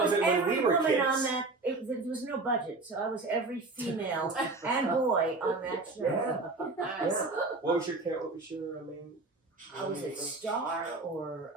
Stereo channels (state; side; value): quieter; left; 3.4 dB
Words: was hit when every we were woman kids. on that. There was no budget, so I was every female and boy on that show. Yeah. Yeah. What was your main? I was it Star or